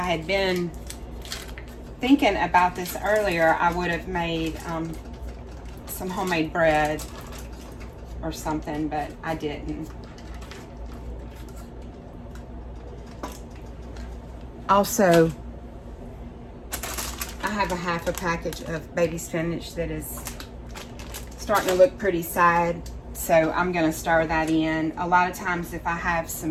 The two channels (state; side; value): identical; both; correlation 1.00